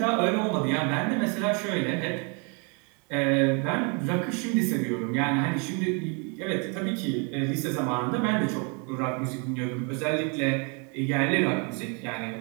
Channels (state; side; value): quieter; left; 35.1 dB